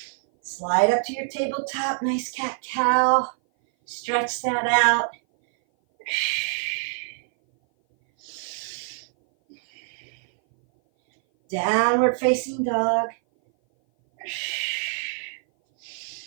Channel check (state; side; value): silent; left; 57 dB below the other